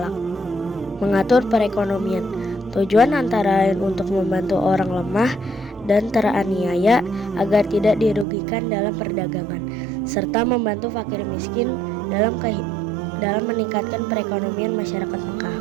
Mengatur perekonomian. Tujuan antara lain untuk membantu orang lemah dan teraniaya agar tidak dirugikan dalam perdagangan, serta membantu fakir miskin dalam dalam meningkatkan perekonomian masyarakat Mekah.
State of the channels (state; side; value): drops out; left; at 8.2 s